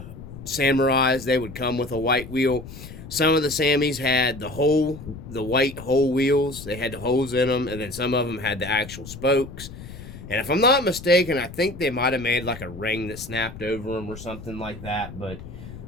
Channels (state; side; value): noise; left; rumble, 14 dB below the sound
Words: Samurais. They would come with a white wheel. Some of the Sammys had the white hole wheels. They had the holes in them, and then some of them had the actual spokes. And if I'm not mistaken, I think they might have made like a ring that snapped over them or something like that. But